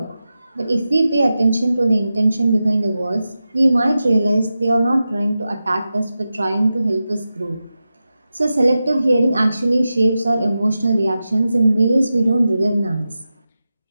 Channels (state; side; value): inverted; both; correlation -0.92